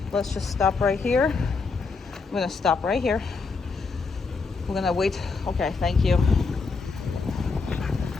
Let's just stop right here. I'm gonna stop right here. We're gonna wait. Okay, thank you.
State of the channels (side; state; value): right; quieter; 4.5 dB